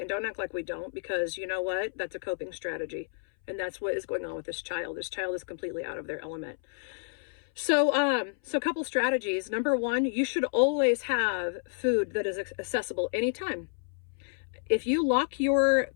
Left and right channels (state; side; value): silent; right; 58 dB below the other